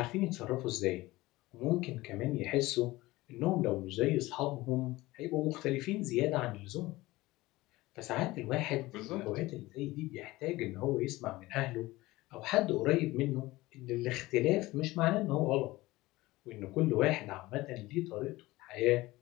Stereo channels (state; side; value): quieter; right; 19.2 dB